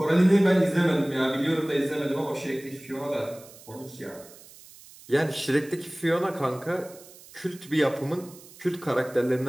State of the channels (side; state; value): right; noise; hiss, 21 dB below the sound